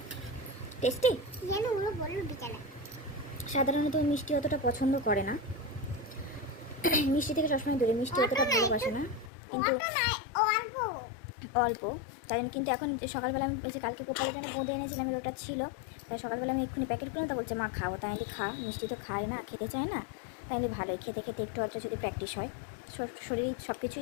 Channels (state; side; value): drops out; right; at 9.3 s